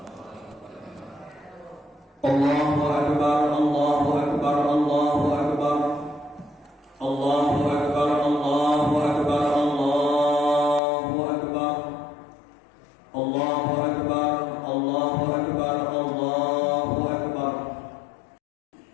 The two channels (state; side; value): drops out; right; at 10.8 s